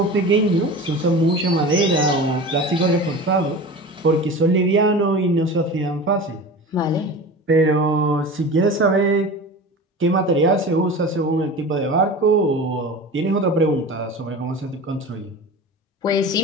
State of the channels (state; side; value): normal; both; correlation 0.33